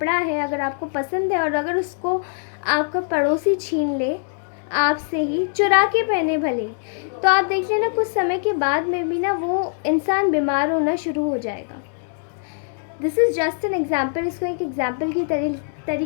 है अगर आपको पसंद है और अगर उसको आपका पड़ोसी छीन ले आपसे ही, चुरा के पहने भले, तो आप देख लेना कुछ समय के बाद में भी ना वो इंसान बीमार होना शुरू हो जाएगा। This is just an example, इसको एक एग्ज़ाम्पल की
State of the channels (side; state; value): right; silent; digital silence